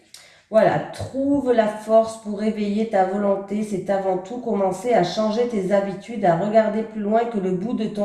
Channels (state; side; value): identical; both; correlation 1.00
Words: Voilà, trouve la force pour réveiller ta volonté. C'est avant tout commencer à changer tes habitudes, à regarder plus loin que le bout de